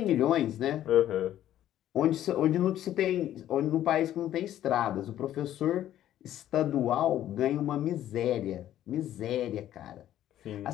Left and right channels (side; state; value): right; quieter; 12.2 dB